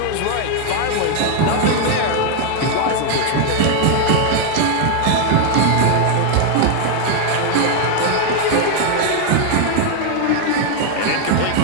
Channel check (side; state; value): both; different; correlation 0.01